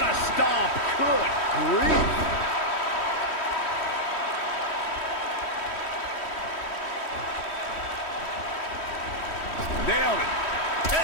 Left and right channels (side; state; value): right; late; 3.1 ms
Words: a stomp. Good grief. Nailed it.